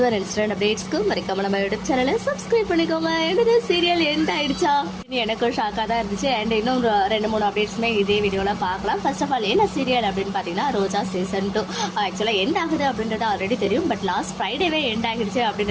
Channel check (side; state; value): both; identical; correlation 1.00